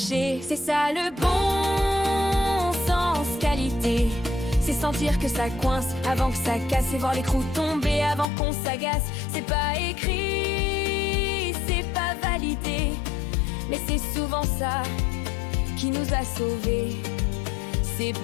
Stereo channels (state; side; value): drops out; right; at 8.2 s